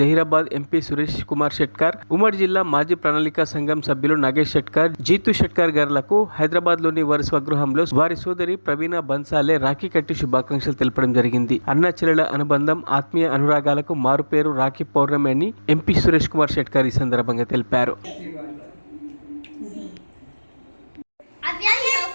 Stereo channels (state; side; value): inverted; both; correlation -1.00